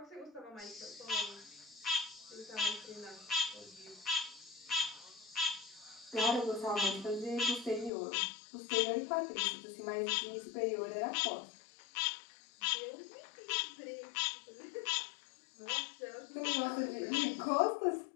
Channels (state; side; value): drops out; right; at 7.9 s